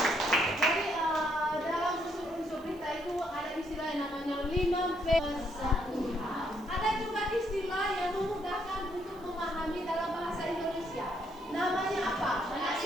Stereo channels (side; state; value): right; noise; hiss, 28 dB below the sound